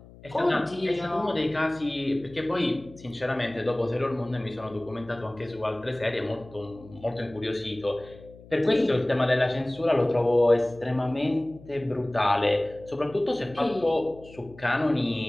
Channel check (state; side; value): noise; left; hum, 21 dB below the sound